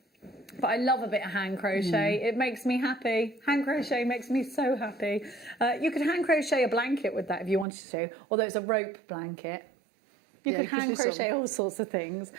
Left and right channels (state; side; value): drops out; left; at 7.7 s